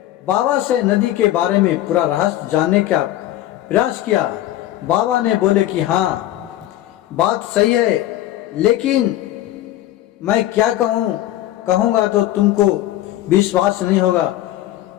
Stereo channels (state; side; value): quieter; right; 14.0 dB